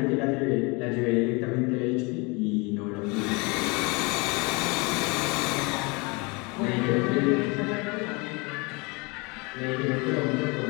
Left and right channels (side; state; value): right; quieter; 28.3 dB